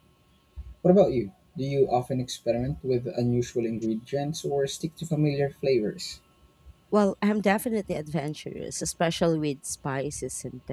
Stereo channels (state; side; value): identical; both; correlation 1.00